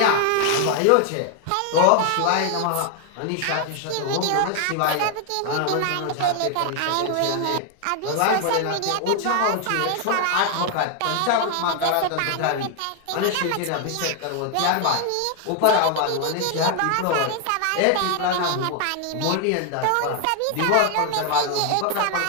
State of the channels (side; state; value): both; different; correlation 0.00